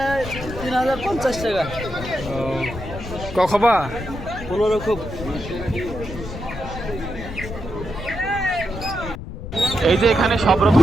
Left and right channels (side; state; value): left; noise; rumble, 9 dB below the sound